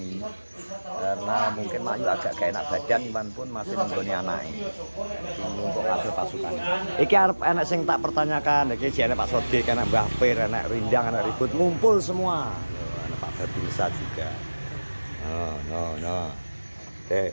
karena mungkin Mayu agak gak enak badan, Iwan pun masih nunggoni anaknya untuk kabel pasukan. Iki arep enak sing tak pertanyakan, iki jane Pak Sodik, anak Mbah Pir, anak Rindang, anak Ribut ngumpul semua. Anak Pak Babinsa juga. No.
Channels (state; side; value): inverted; both; correlation -1.00